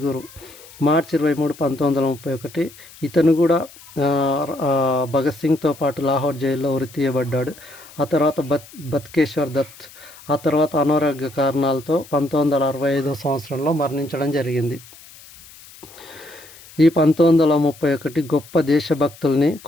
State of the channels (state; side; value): noise; left; hiss, 21 dB below the sound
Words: మార్చి 23, 1931 ఇతను కూడా భగత్ సింగ్తో పాటు లాహోర్ జైల్లో ఉరి తీయబడ్డాడు. ఆ తర్వాత బత్కేశ్వర్ దత్ ఆ తర్వాత అనారోగ్య కారణాలతో 1965 సంవత్సరంలో మరణించడం జరిగింది. ఈ 1931 గొప్ప దేశభక్తుల్ని